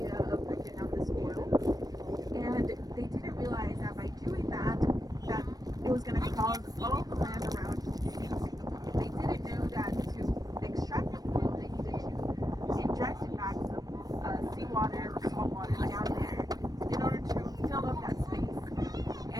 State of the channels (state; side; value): late; left; 0.19 ms